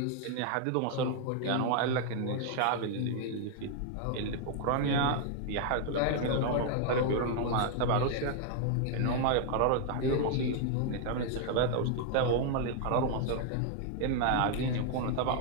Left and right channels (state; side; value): different; both; correlation 0.00